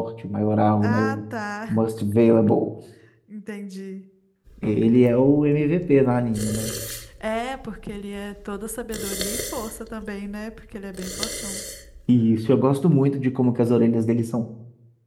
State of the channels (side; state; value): both; identical; correlation 1.00